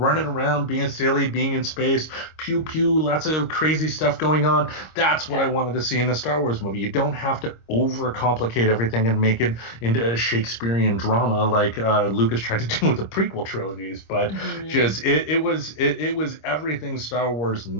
around, being silly, being in space, pew pew, lots of crazy stuff going on. That's what I wanted to see in a Star Wars movie. You don't have to overcomplicate everything and make it into a Shakespearean drama like Lucas tried to do with the prequel trilogies. But just it was everything Star Wars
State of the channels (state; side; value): late; right; 26 ms